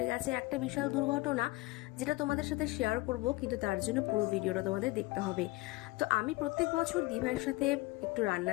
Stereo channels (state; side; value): quieter; right; 21.6 dB